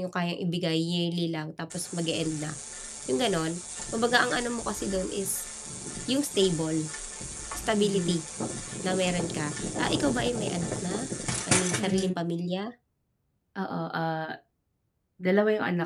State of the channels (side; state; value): both; identical; correlation 1.00